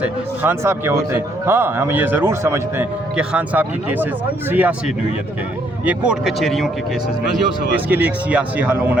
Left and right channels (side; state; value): both; normal; correlation 0.69